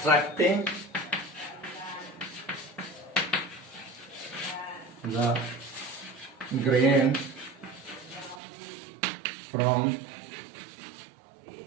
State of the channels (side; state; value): left; drops out; at 8.4 s